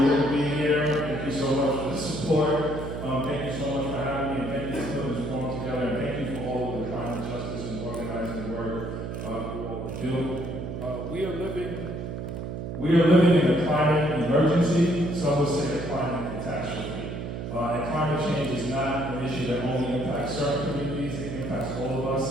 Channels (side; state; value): right; noise; hum, 6 dB below the sound